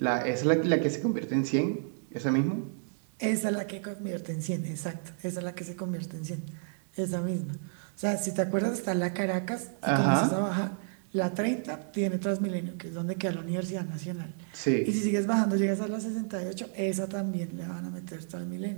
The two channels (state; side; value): silent; left; digital silence